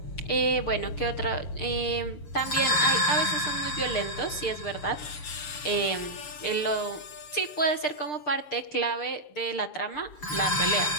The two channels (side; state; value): right; late; 6.7 ms